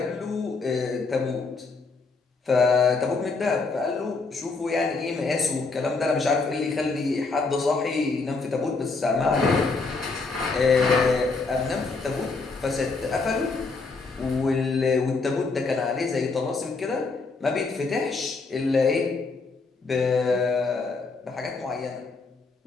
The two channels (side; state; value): right; quieter; 4.0 dB